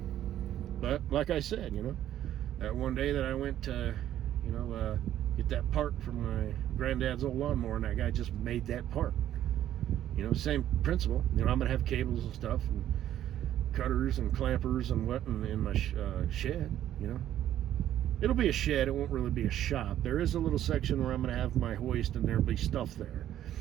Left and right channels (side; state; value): left; quieter; 11.8 dB